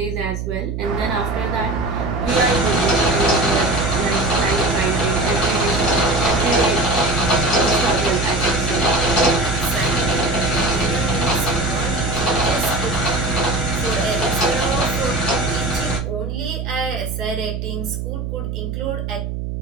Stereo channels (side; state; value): right; noise; hum, 4 dB below the sound